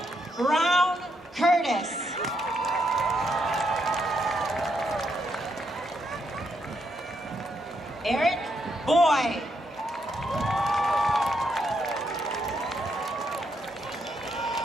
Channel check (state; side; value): normal; both; correlation 0.78